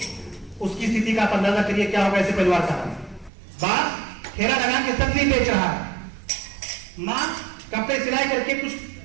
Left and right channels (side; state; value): left; drops out; at 3.3 s